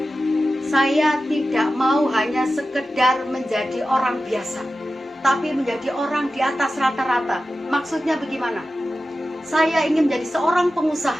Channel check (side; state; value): both; normal; correlation 0.93